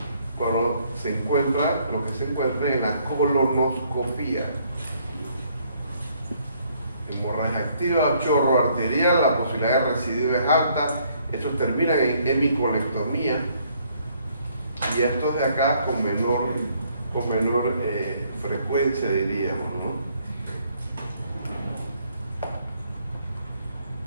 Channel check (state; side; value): inverted; both; correlation -0.67